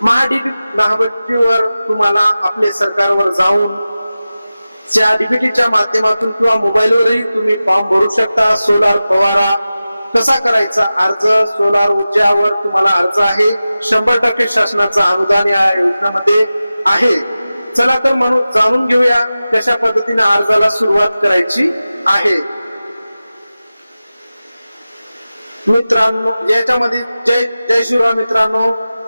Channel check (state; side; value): inverted; both; correlation -0.95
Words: महाडीबीटीवर तुम्हाला आपले सरकारवर जाऊन त्या डीबीटीच्या माध्यमातून किंवा मोबाईलवरही तुम्ही फॉर्म भरू शकता। सोलार फवारा कसा करायचा अर्ज, सोलार ऊर्जावर तुम्हाला अर्ज आहे, 100% शासनाचं अनुदान या योजनेमध्ये आहे। चला तर म्हणून जाणून घेऊया कशा पद्धतीने अर्जाला सुरुवात करायची आहे। मित्रांनो याच्यामध्ये जय श्रीराम मित्रांनो,